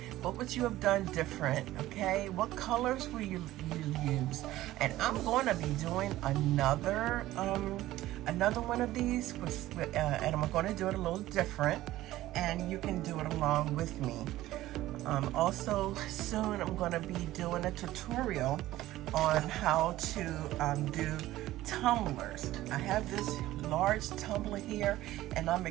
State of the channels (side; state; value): left; quieter; 15.6 dB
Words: What would you have done different, okay? What colors will you use? And I'm going to be doing another one of these, and I'm going to do it a little different, and you can do it along with me. Also, soon I'm going to be doing a tutorial on how to do tumblers. I have this large tumbler here, and I'm